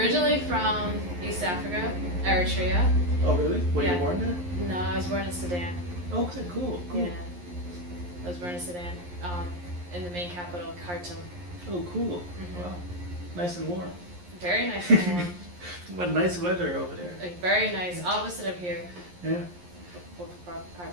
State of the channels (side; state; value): left; late; 11 ms